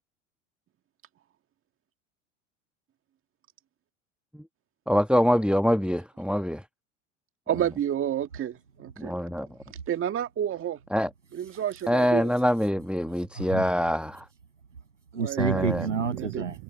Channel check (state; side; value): normal; both; correlation 0.71